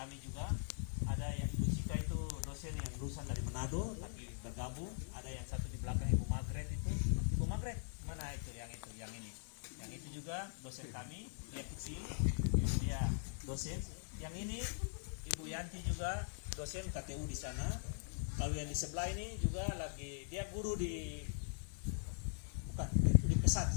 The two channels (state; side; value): silent; right; digital silence